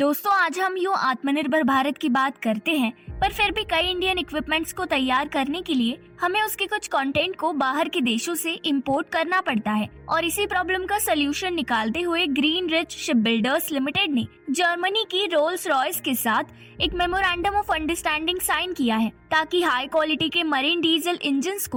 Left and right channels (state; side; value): identical; both; correlation 1.00